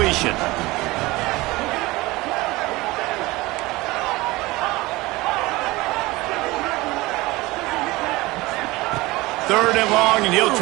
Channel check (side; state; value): left; quieter; 20.8 dB